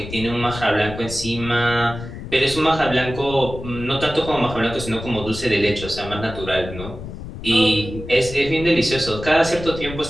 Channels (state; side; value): noise; left; rumble, 11 dB below the sound